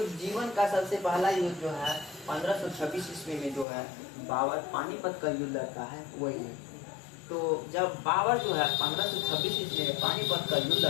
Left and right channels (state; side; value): drops out; right; at 3.7 s